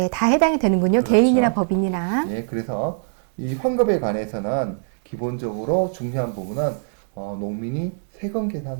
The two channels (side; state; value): left; silent; digital silence